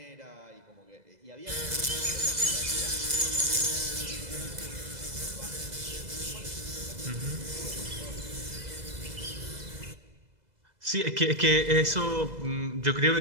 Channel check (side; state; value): left; late; 2.0 ms